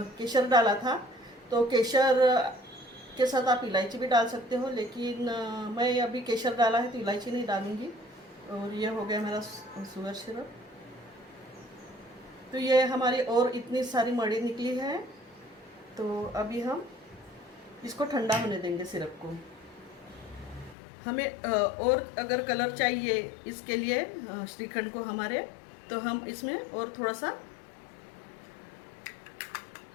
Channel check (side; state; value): right; drops out; at 20.8 s